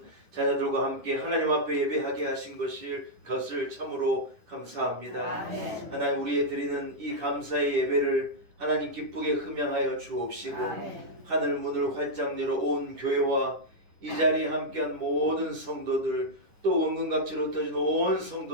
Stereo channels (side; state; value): left; late; 10 ms